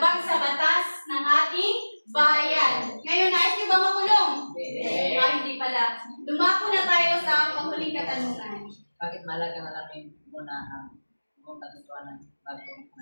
sa batas ng ating bayan. Ngayon, nais niyo ba makulong? Hindi pala. Dumako na tayo sa panghuling katanungan. Bakit mahalaga na namin muna ang buong katotohanan bago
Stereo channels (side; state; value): both; inverted; correlation -1.00